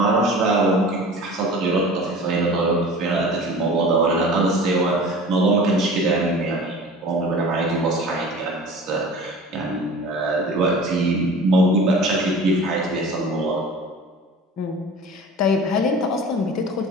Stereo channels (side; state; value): both; normal; correlation 0.40